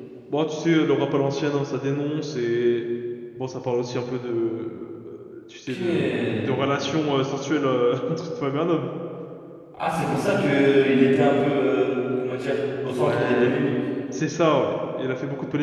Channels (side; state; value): both; identical; correlation 1.00